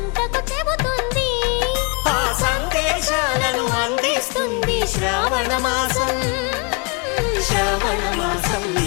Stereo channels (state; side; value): quieter; right; 31.9 dB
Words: చెబుతుంది ఆ సందేశాలను అందిస్తుంది శ్రావణ మాసం శ్రావణ మాసం